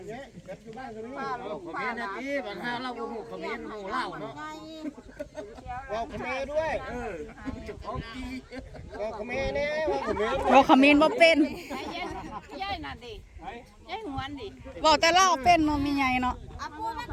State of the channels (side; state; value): both; identical; correlation 1.00